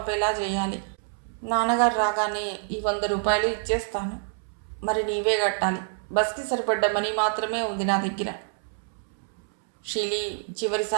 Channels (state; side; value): silent; left; 60 dB below the other